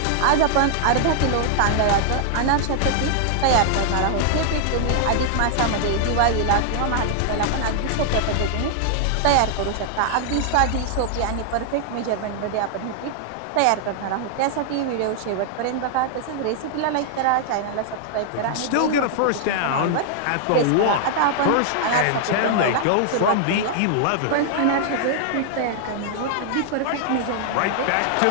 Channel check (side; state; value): both; different; correlation -0.01